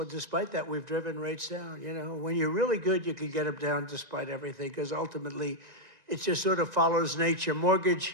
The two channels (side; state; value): left; late; 1.9 ms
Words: Despite that, we've driven rates down. You know, when you're really good, you can get them down despite everything, because ultimately it just sort of follows nature.